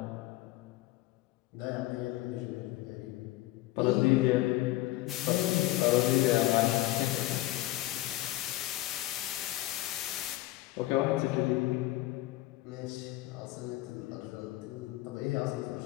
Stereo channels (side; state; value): right; quieter; 17.4 dB